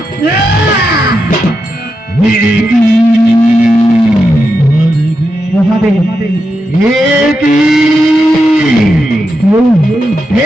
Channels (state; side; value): normal; both; correlation 0.86